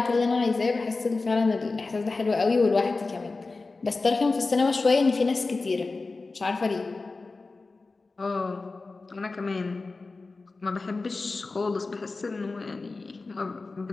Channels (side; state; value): right; quieter; 3.7 dB